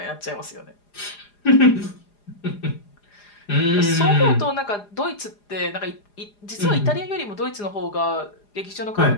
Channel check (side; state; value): right; late; 4.9 ms